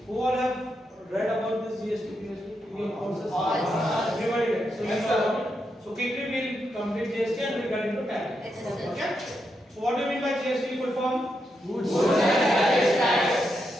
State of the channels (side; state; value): both; normal; correlation 0.83